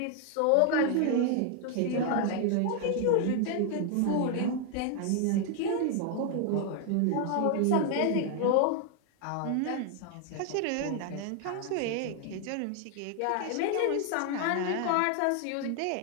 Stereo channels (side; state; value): both; different; correlation 0.00